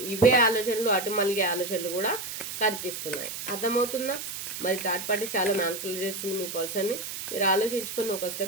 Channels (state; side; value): noise; right; hiss, 7 dB below the sound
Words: ఇవే ఆలోచనలు అటు మళ్ళీ ఆలోచనలు కూడా కనిపిస్తున్నాయి. అర్థమవుతుందా. మరి థర్డ్ పార్టీ చాలా మ్యానిపులేట్ చేస్తుంది మీ పర్సన్ని. మీరు ఆలోచించుకుని ఒక